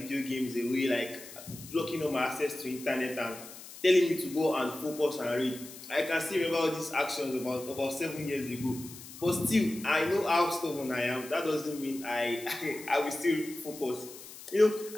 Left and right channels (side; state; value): left; noise; hiss, 15 dB below the sound